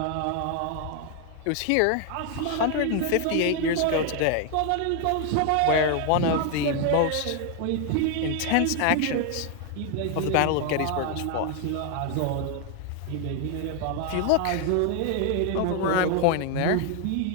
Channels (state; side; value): different; both; correlation 0.00